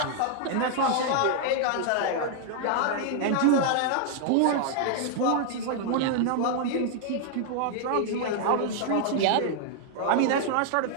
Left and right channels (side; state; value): both; different; correlation 0.00